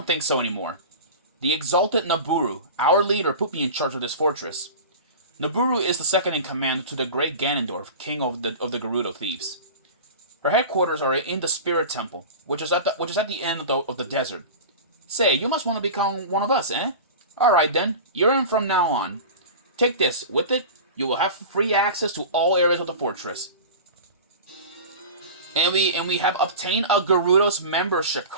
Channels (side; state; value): both; inverted; correlation -0.32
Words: think so anymore. The exalted Nabooru, our leader, put me in charge of this fortress. Nabooru is the second in command to the great Ganondorf, king of the Gerudo thieves. Her headquarters are in the Spirit Temple, which is at the end of the desert. Say, you must want to become one of us, eh? Alright then, you're in from now on. Take this. With it, you will have free access to all areas of the fortress. And we have obtained a Gerudo's membership